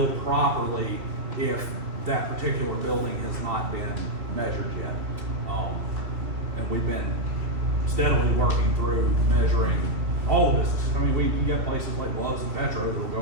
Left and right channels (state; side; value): late; left; 2.7 ms